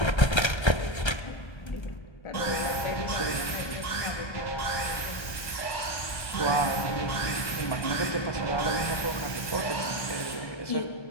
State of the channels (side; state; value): right; late; 1.3 ms